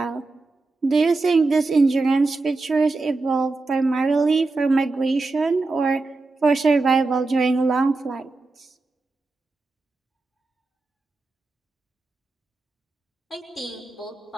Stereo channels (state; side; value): quieter; left; 3.5 dB